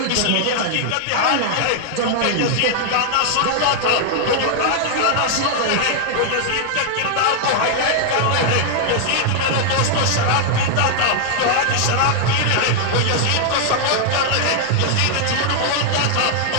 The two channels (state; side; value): different; both; correlation 0.00